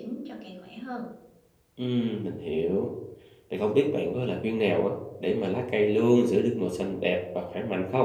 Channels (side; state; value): both; identical; correlation 1.00